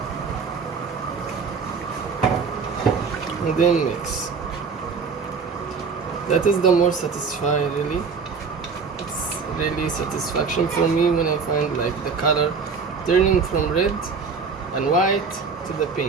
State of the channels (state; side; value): quieter; left; 5.2 dB